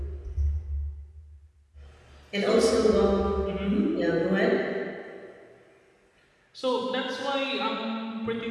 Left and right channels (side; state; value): both; identical; correlation 1.00